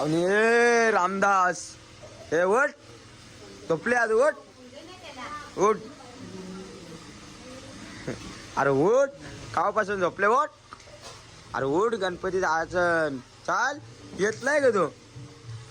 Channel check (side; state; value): both; identical; correlation 1.00